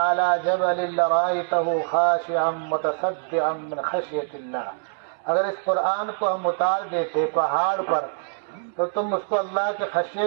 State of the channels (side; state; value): left; silent; 62 dB below the other